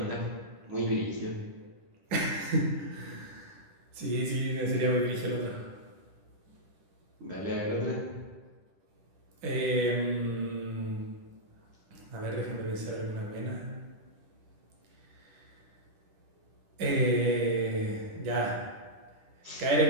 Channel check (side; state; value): left; late; 10 ms